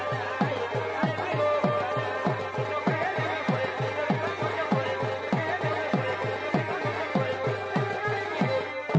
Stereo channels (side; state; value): both; identical; correlation 1.00